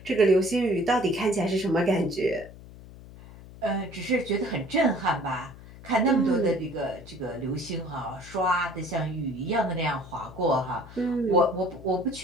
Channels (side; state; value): left; noise; hum, 18 dB below the sound